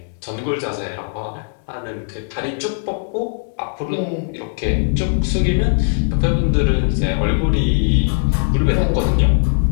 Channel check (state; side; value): silent; right; digital silence